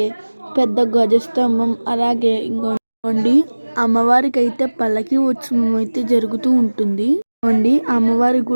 పెద్ద ధ్వజస్తంభం, అలాగే ఇంకోండి అమ్మవారికి అయితే పల్లకి ఉత్సవం అయితే జరుగుతూ ఉంటుంది. అమ్మవారి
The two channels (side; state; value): both; inverted; correlation -1.00